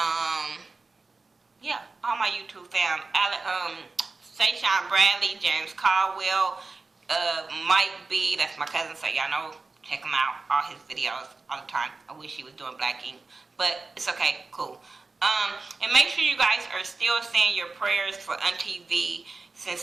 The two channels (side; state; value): left; quieter; 3.8 dB